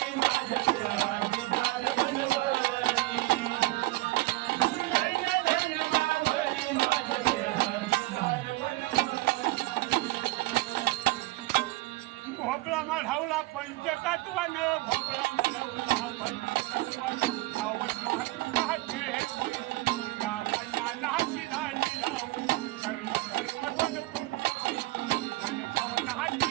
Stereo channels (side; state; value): left; quieter; 19.9 dB